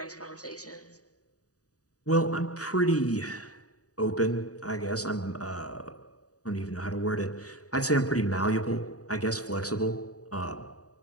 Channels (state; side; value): late; right; 0.67 ms